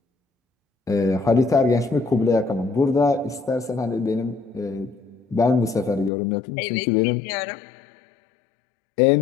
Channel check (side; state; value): right; drops out; at 6.1 s